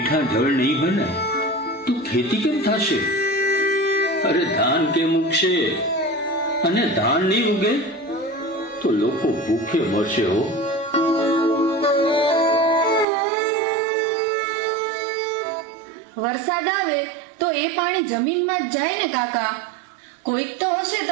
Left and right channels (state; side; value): drops out; left; at 13.1 s